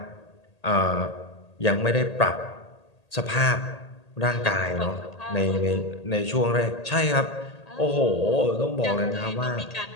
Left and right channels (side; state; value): right; late; 1.8 ms